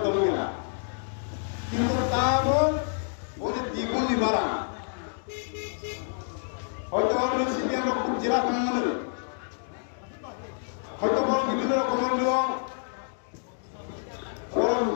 হইল না কিন্তু তাও ওদের দ্বিগুণ বাড়া হয়তো আমরা সিপিএম খুব জেলা কমানোর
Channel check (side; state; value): right; silent; digital silence